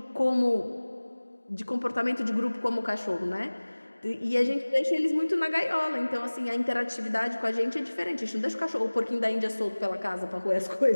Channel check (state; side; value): inverted; both; correlation -1.00